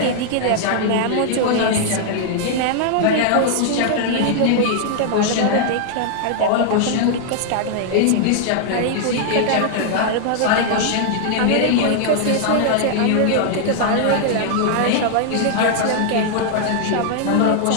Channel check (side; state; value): both; different; correlation 0.00